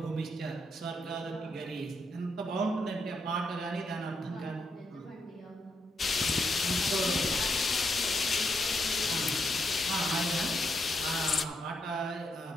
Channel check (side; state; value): both; normal; correlation 0.79